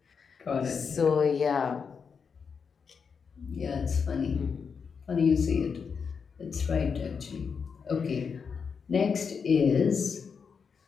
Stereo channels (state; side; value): quieter; right; 6.0 dB